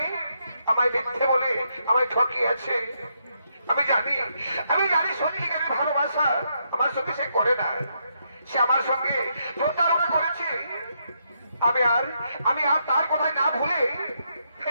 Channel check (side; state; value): both; inverted; correlation -0.78